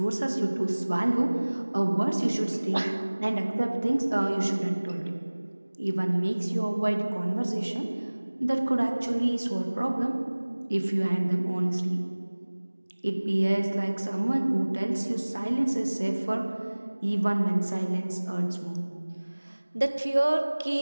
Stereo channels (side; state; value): both; inverted; correlation -1.00